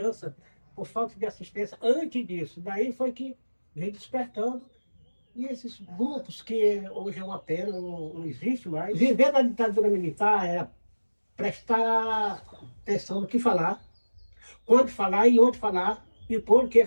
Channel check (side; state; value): both; inverted; correlation -1.00